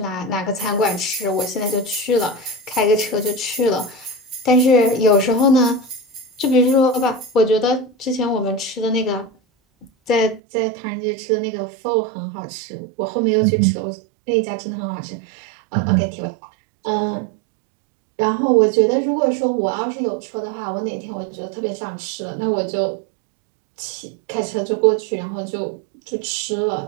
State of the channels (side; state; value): left; drops out; at 10.4 s